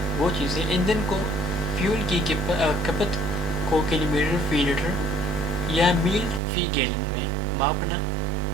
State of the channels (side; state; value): left; drops out; at 6.4 s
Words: وہ چیزیں ایندھن کو فیول کی کھپت کو کلومیٹر فی لیٹر یا میل فی گیلن میں ماپنا